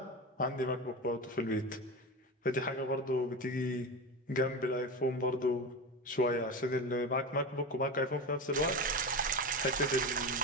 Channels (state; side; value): normal; both; correlation 0.23